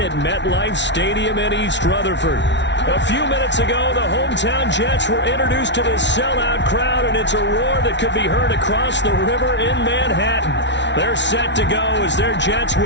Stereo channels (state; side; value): late; right; 0.51 ms